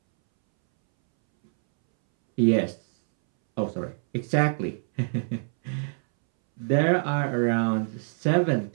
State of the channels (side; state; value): left; silent; 62 dB below the other